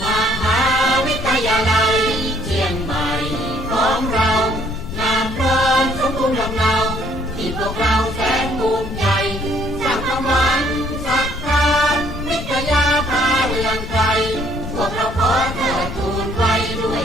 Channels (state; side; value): noise; left; rumble, 9 dB below the sound